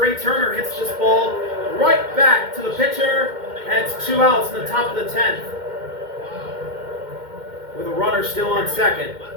Turner hits this ball right back to the pitcher, and it's 2 outs in the top of the 10th, with a runner still on second.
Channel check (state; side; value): late; left; 2.1 ms